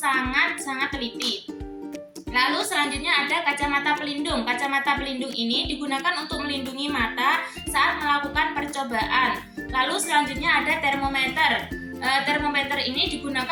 teliti. Lalu selanjutnya ada kacamata pelindung. Kacamata pelindung ini digunakan untuk melindungi mata saat melakukan percobaan. Lalu selanjutnya ada termometer. Termometer ini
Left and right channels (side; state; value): both; identical; correlation 1.00